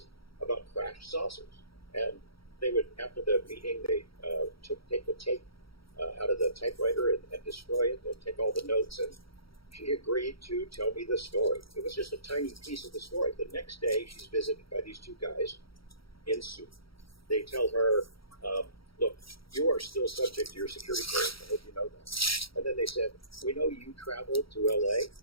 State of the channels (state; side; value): late; right; 0.75 ms